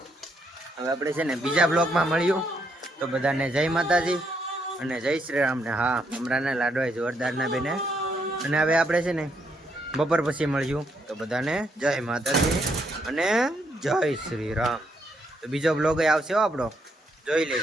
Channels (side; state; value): both; normal; correlation 0.75